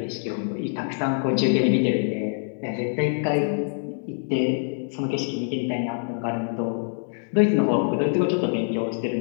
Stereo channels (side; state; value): right; silent; digital silence